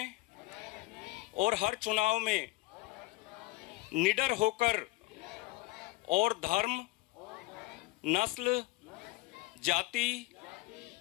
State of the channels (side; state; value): right; quieter; 20.6 dB